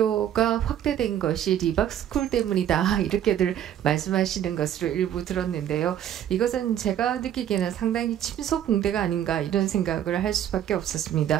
확대된 것이 리박스쿨 때문이다 이렇게들 말씀하시는 것으로 일부 들었는데요. 이것은 제가 느끼기에는 상당히 침소봉대가 아닌가 이런 생각을 할 수밖에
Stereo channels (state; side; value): quieter; left; 10.6 dB